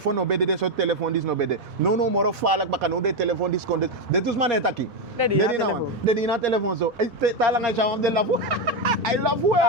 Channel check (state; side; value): normal; both; correlation 0.08